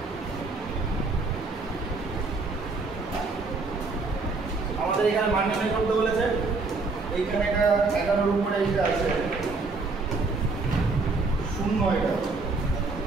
আমাদের এখানে মান নির্ণয় করতে বলেছে। এইখানে একটা 11 এর উপরে এটা আছে 0, এটা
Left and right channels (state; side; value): quieter; left; 3.8 dB